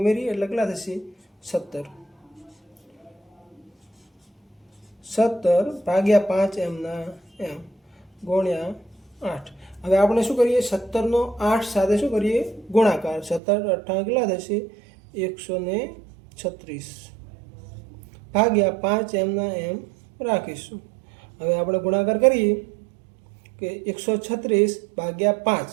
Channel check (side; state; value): left; drops out; at 13.4 s